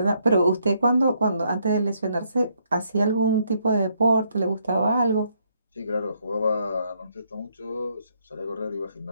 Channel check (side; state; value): both; inverted; correlation -0.72